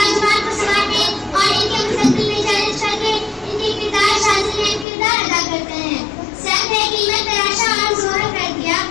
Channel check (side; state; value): right; drops out; at 4.9 s